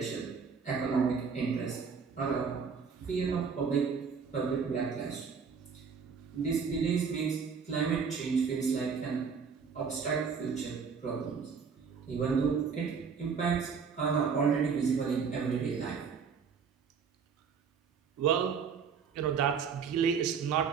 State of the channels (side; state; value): left; quieter; 6.0 dB